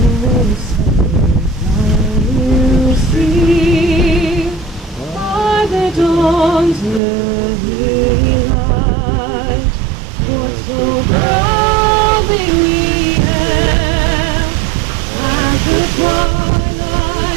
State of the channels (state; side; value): drops out; left; at 7.0 s